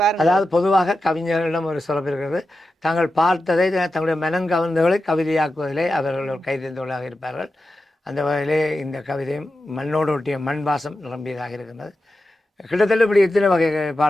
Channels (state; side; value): normal; both; correlation 0.91